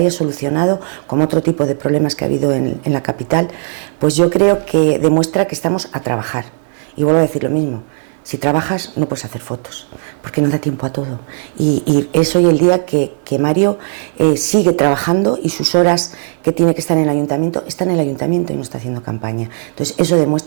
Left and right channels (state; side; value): silent; left; 56 dB below the other